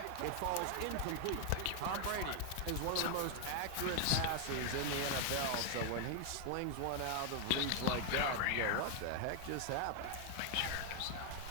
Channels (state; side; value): different; both; correlation 0.00